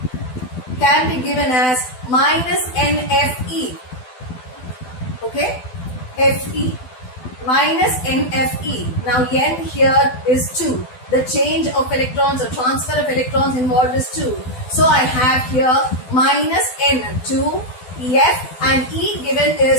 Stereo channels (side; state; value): right; late; 12 ms